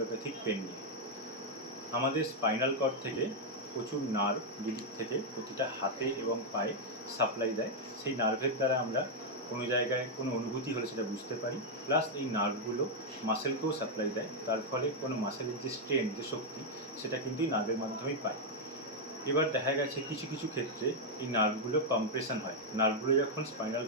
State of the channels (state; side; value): normal; both; correlation -0.01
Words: পেন নিয়ে। আমাদের স্পাইনাল কর্ড থেকে প্রচুর নার্ভ যেদিক থেকে প্রতিটা হাতে এবং পায়ে সাপ্লাই দেয়। সেই নার্ভের দ্বারা আমরা কোনো জায়গায় কোনো অনুভূতি হলে সেটা বুঝতে পারি, প্লাস এই নার্ভগুলো মাসেলকেও সাপ্লাই দেয়। তার ফলে কোনো মাসেলের যে স্ট্রেন, যে শক্তি, সেটা কিন্তু এই নার্ভের মাধ্যমেই পায়। এবার দেখা গেছে কিছু কিছু ক্ষেত্রে এই নার্ভগুলো কম্প্রেশন হয়। নার্ভগুলো যখন স্পাইনাল